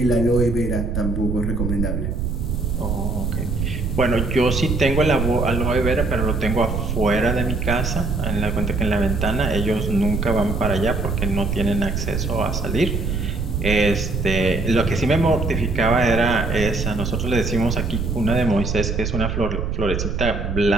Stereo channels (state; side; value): noise; right; rumble, 2 dB below the sound